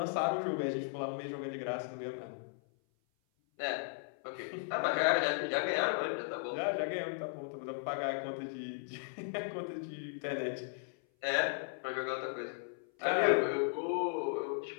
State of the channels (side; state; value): right; silent; 54 dB below the other